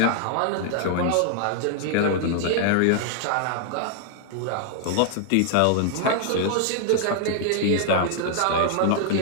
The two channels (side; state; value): both; different; correlation 0.00